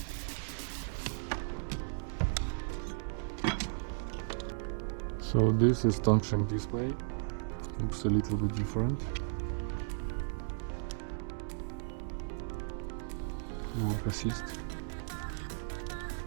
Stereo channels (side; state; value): left; silent; digital silence